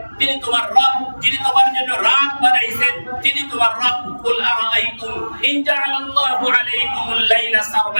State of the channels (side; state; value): both; inverted; correlation -1.00